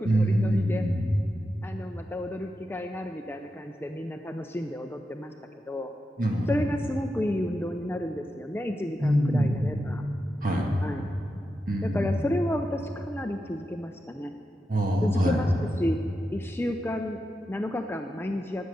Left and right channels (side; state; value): both; normal; correlation 0.88